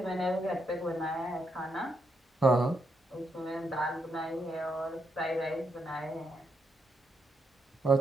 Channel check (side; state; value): both; normal; correlation 0.80